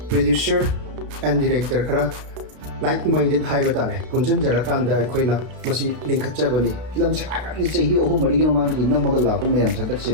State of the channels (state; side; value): late; left; 33 ms